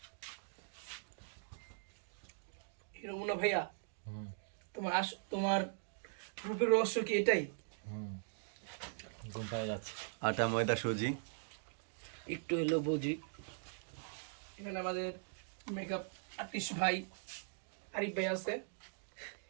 হিরো মুন্না ভাইয়া, তোমার রূপের রহস্য কি এটাই? ঘুম পায়ে যাচ্ছে। আটা ময়দা সুজি একটু হলো বুঝি। এখানে আমাদের মেকআপ আর্টিস্ট ভাই আরিফ ভাই আছে।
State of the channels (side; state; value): left; silent; digital silence